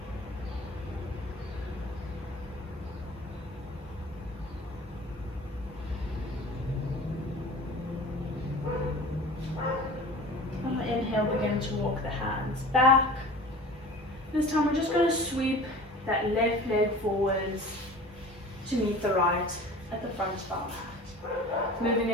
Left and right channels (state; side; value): normal; both; correlation 0.41